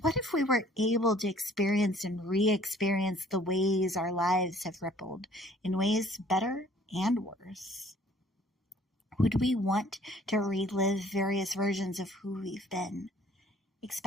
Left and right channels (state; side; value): normal; both; correlation 0.56